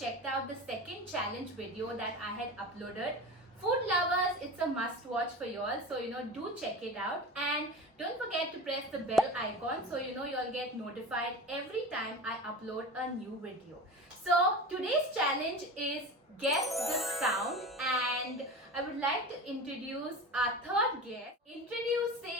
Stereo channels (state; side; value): normal; both; correlation 0.31